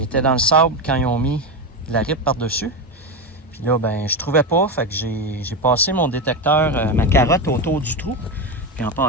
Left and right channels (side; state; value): both; normal; correlation 0.14